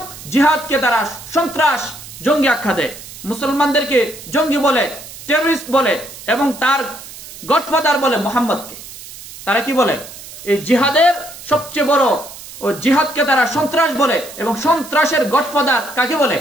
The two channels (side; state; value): right; noise; hiss, 15 dB below the sound